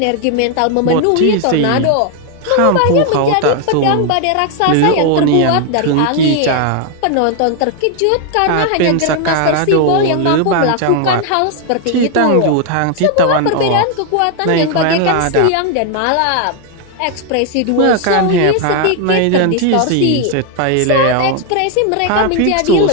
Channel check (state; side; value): different; both; correlation 0.01